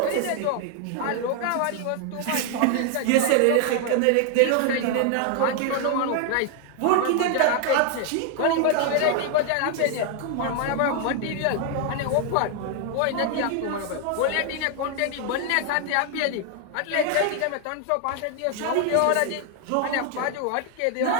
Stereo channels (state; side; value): different; both; correlation 0.00